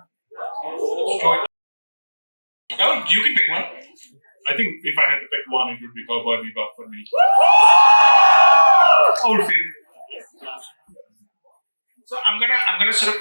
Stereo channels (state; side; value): inverted; both; correlation -1.00